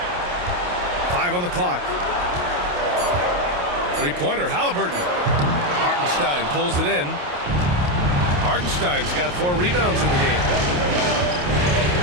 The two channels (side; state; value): left; late; 28 ms